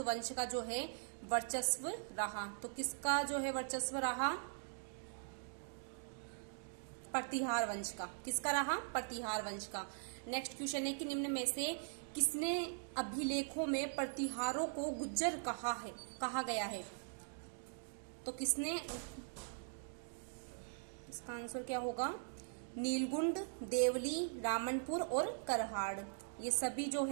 वंश का जो है वर्चस्व रहा? तो किसका जो है वर्चस्व रहा? प्रतिहार वंश का। किसका रहा? प्रतिहार वंश का। नेक्स्ट क्वेश्चन है कि निम्न में से किसने अभिलेखों में प्रतिहारों को गुज्जर कहा गया है? तो किसने? इसका आंसर क्या होगा? नीलगुंड, देवली, रामनपुर और करहाड़, ये सभी जो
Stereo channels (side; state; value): left; silent; digital silence